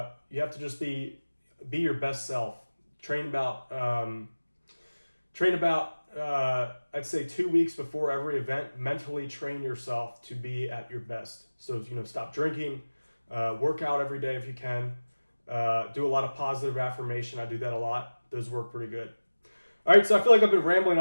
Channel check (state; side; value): inverted; both; correlation -1.00